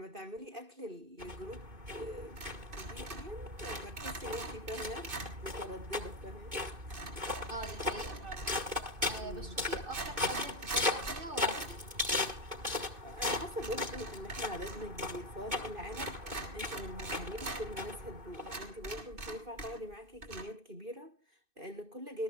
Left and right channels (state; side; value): late; left; 2.6 ms